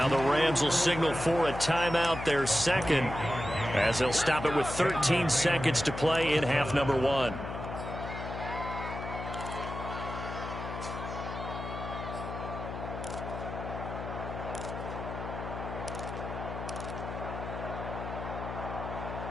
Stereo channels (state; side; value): noise; left; hum, 7 dB below the sound